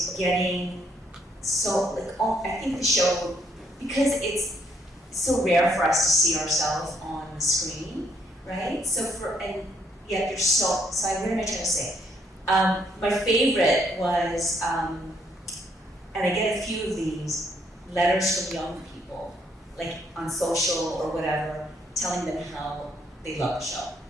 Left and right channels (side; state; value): both; normal; correlation 0.71